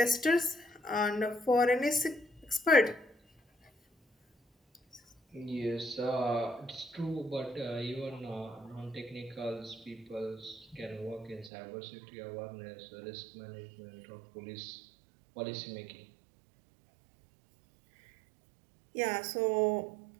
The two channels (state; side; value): drops out; left; at 11.5 s